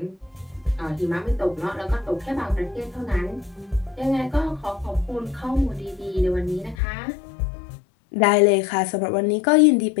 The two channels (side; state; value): right; drops out; at 6.8 s